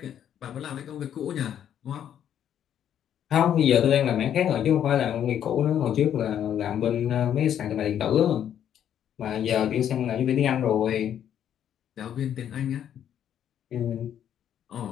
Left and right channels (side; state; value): right; quieter; 9.8 dB